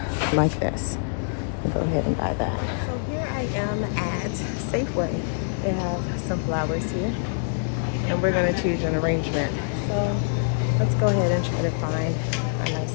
like this. I'll go ahead and buy that. So here I am at Safeway. They have some flowers here, and we're gonna choose an arrangement. So let's go ahead and try to find a nice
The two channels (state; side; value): silent; right; digital silence